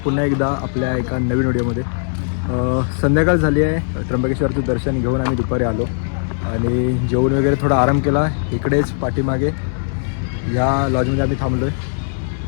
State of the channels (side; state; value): right; silent; digital silence